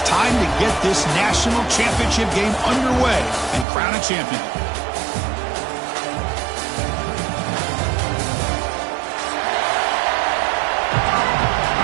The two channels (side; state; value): left; drops out; at 3.7 s